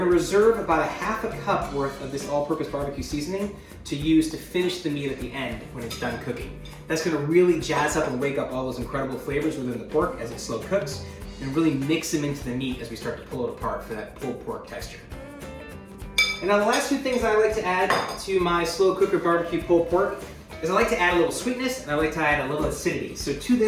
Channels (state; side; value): identical; both; correlation 1.00